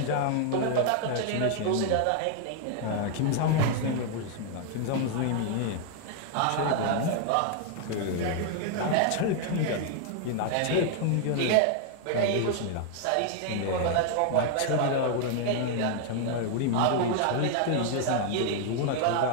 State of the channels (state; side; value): different; both; correlation 0.00